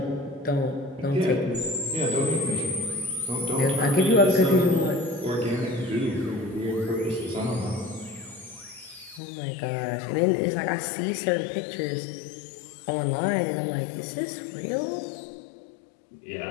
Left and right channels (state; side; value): drops out; right; at 9.2 s